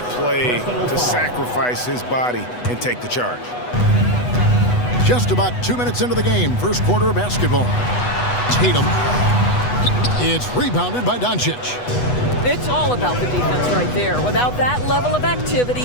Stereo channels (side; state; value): right; late; 8.1 ms